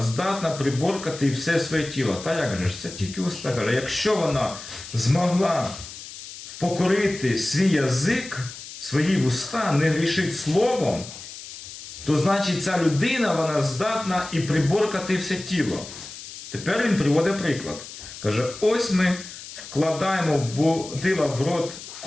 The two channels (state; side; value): noise; left; hiss, 13 dB below the sound